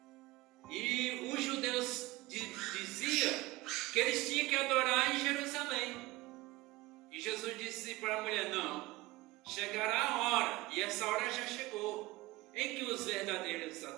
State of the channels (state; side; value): quieter; left; 20.0 dB